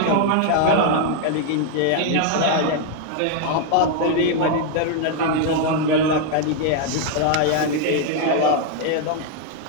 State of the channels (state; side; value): different; both; correlation 0.00